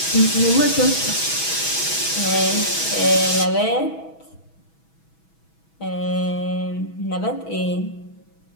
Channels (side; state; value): right; late; 6.2 ms